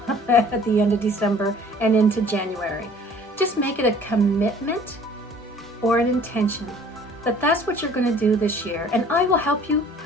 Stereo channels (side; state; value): both; normal; correlation 0.52